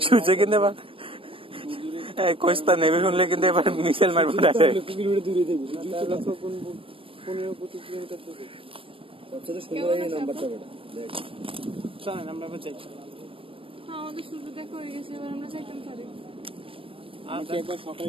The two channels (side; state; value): left; late; 0.26 ms